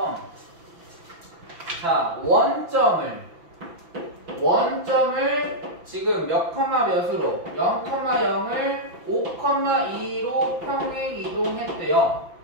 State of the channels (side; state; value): left; late; 5.9 ms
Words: 자, 원점을 지금 몇 컴마 몇으로 0,0을 5,2로 평행 이동했대요.